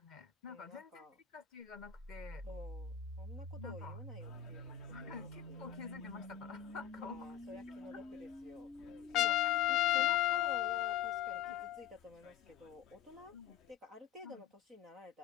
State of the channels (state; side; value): quieter; right; 10.8 dB